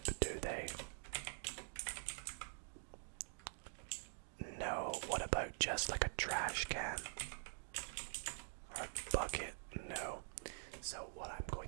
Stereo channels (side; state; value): left; silent; digital silence